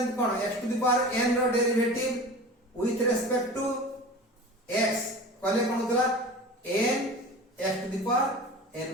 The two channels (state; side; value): normal; both; correlation 0.35